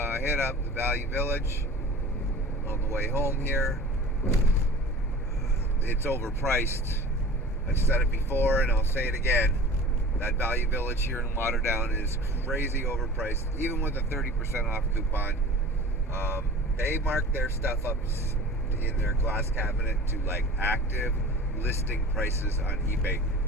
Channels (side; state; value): both; normal; correlation 0.40